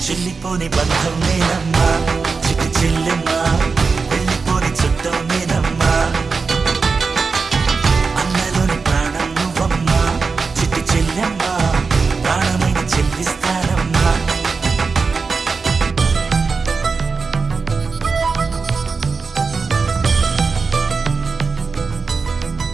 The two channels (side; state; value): left; quieter; 4.7 dB